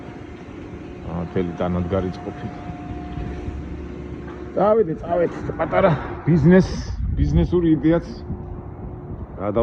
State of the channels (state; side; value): identical; both; correlation 1.00